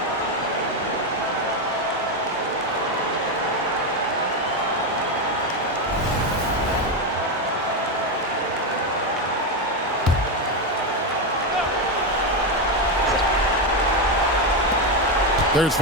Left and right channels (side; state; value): both; normal; correlation 0.09